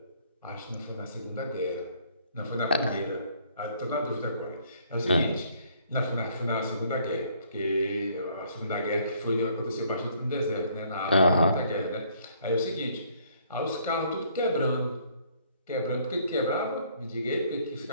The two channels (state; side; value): inverted; both; correlation -0.63